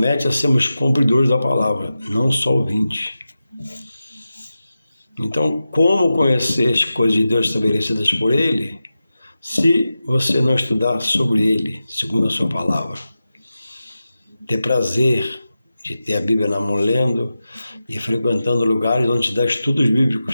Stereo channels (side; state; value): both; inverted; correlation -0.93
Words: a sermos cumpridores da palavra, não só ouvintes. Então, como conhecer as coisas de Deus estabelecidas por Ele, se você não estudar sobre Ele, segundo a sua palavra? Ter prazer de ter a Bíblia na mão lendo e frequentando lugares onde se dá estudos